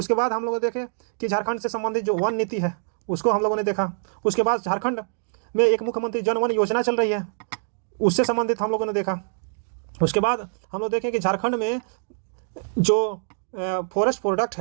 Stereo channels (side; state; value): left; silent; digital silence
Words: बाद हम लोग देखे कि झारखंड से संबंधित जो वन नीति है उसको हम लोगों ने देखा। उसके बाद झारखंड में एक मुख्यमंत्री जन वन योजना चल रही है, उससे संबंधित हम लोगों ने देखा। उसके बाद हम लोग देखें कि झारखंड में जो फॉरेस्ट प्रोडक्ट